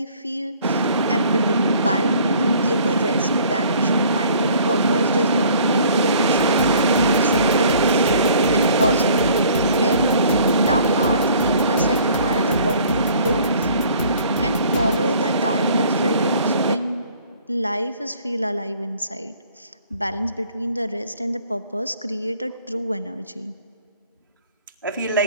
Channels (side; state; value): both; inverted; correlation -0.54